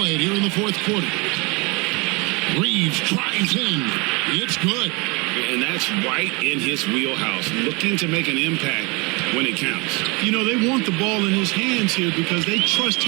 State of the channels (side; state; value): left; quieter; 27.9 dB